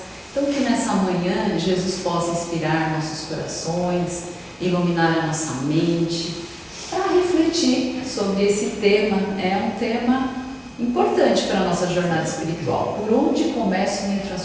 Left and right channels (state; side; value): identical; both; correlation 1.00